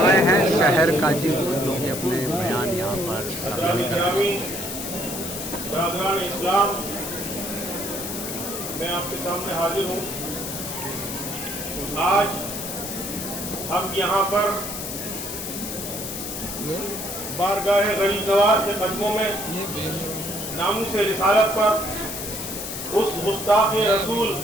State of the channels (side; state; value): left; noise; hiss, 6 dB below the sound